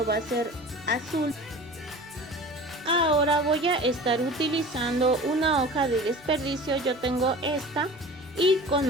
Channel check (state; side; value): normal; both; correlation 0.39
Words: va a ser azul. Ahora voy a estar utilizando una hoja de desperdicio. Yo tengo esta y con